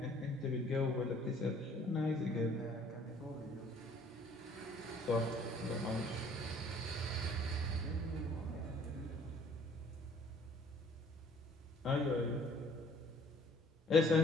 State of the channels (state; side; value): normal; both; correlation 0.57